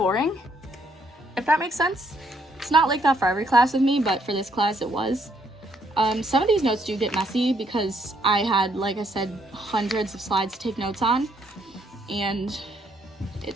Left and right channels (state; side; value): normal; both; correlation 0.70